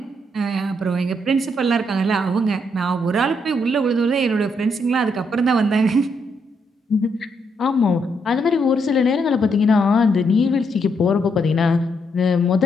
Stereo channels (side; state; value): both; normal; correlation 0.76